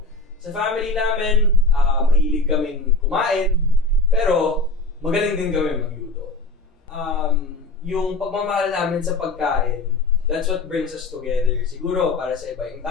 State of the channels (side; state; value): right; quieter; 3.3 dB